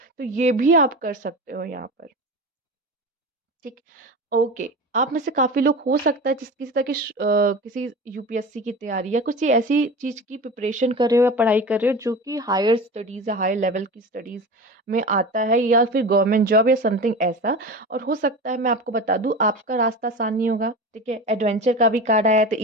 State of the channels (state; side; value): normal; both; correlation 0.30